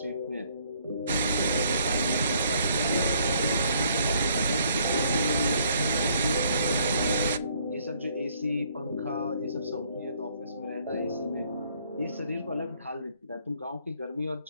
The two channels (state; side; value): inverted; both; correlation -0.65